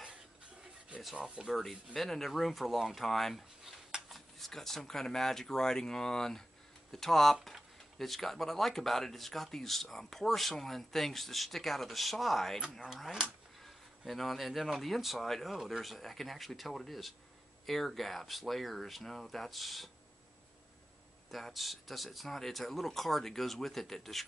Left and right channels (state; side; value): normal; both; correlation 0.93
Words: It's awful dirty. Been in the room for a long time. It's got some kind of magic writing on the top. It's got, what I like about it, it's got these porcelain things that stick out of the side, all right? And then on the inside, oh, I can actually tell what it is. Air gaps, layers. No, it's not. It's a little card that goes with it that